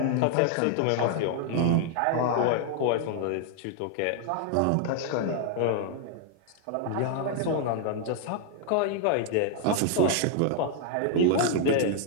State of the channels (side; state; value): both; different; correlation 0.00